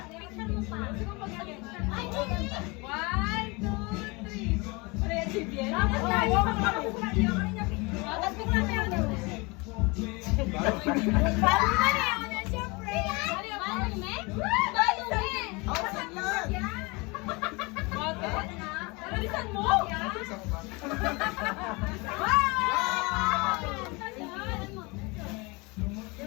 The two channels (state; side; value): quieter; right; 26.9 dB